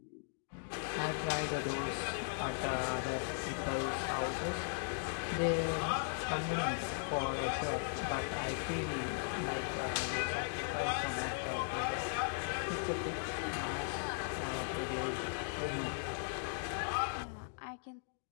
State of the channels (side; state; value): right; silent; digital silence